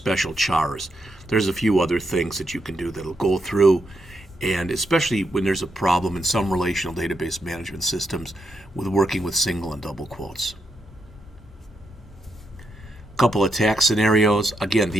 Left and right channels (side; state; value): both; normal; correlation 0.81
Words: chars. There's a few other things that you can do that'll go through, and especially when there's a problem in some relational database management systems with working with single and double quotes. Couple attack scenarios. Again,